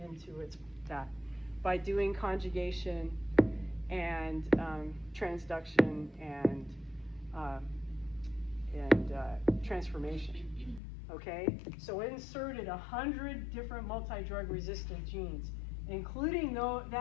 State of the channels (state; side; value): drops out; right; at 10.8 s